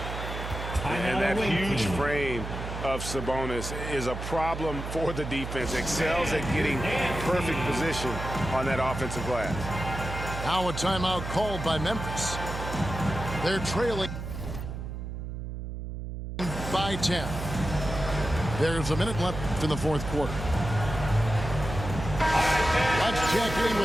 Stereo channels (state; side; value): noise; right; hum, 7 dB below the sound